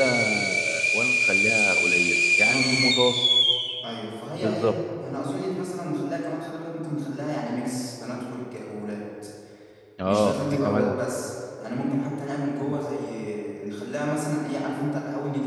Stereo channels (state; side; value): identical; both; correlation 1.00